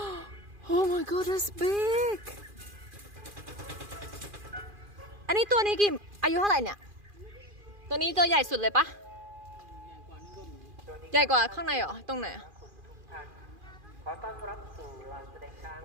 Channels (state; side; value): late; left; 2.4 ms